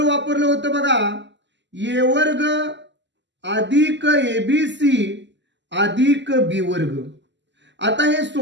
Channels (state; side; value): late; left; 0.53 ms